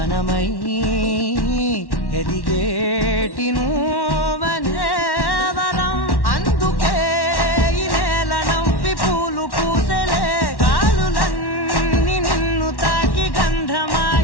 ఎదిగేటి నువ్వనే వరం. అందుకే ఈ నేల నవ్వి పూలు పూసెలే, గాలులన్నీ నిన్ను తాకి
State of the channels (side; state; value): right; late; 1.1 ms